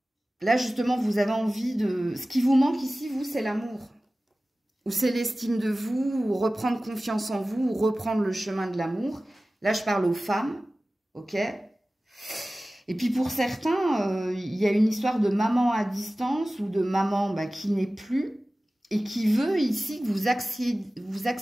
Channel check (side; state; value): both; normal; correlation 0.97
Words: justement, vous avez envie de... Ce qui vous manque ici, vous, c'est l'amour. Ou c'est l'estime de vous, ou reprendre confiance en vous, ou reprendre le chemin de l'amour. Là, je parle aux femmes, ok? Et puis pour certains, il y a une histoire de maman à distance, ou de maman bah, qui n'est plus, et qui veut ici que vous